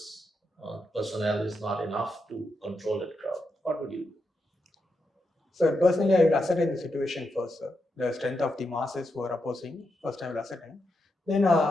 personnel is not enough to control that crowd. What would you do? So personally, I will ascertain the situation first, sir. The strength of the masses who are opposing. First, I will ascertain. Then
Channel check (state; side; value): normal; both; correlation 0.85